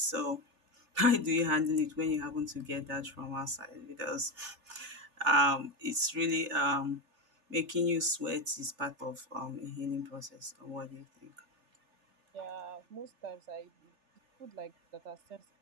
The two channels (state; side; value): late; left; 3.4 ms